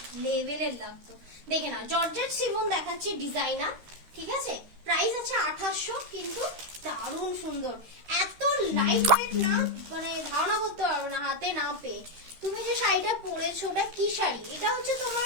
লেভেলের লাগতো। দেখে না, জর্জেট শিফন দেখাচ্ছি ডিজাইনার, ঠিক আছে? প্রাইস আছে 2800, কিন্তু দারুণ সুন্দর, এত লাইট ওয়েট না, মানে ধারণা করতে পারবে না হাতে না পেয়ে। তুমি যে শাড়িটা পরেছো ওটা কি শাড়ি? এটা হচ্ছে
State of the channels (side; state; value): left; late; 13 ms